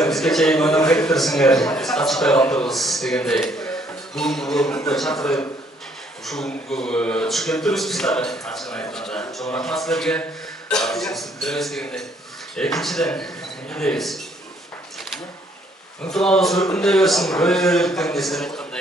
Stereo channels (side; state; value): both; normal; correlation 0.66